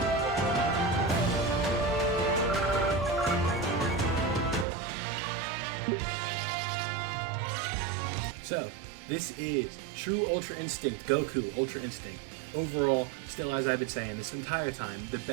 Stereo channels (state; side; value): drops out; left; at 4.7 s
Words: So, this is True Ultra Instinct, Goku Ultra Instinct. Overall, still as I've been saying this entire time, the